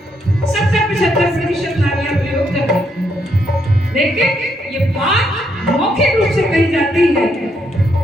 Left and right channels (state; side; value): normal; both; correlation 0.76